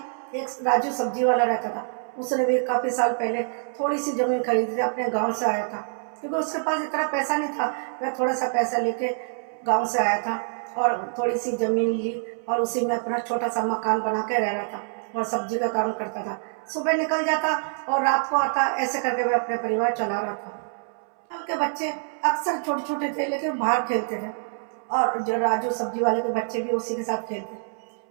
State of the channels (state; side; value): silent; left; 61 dB below the other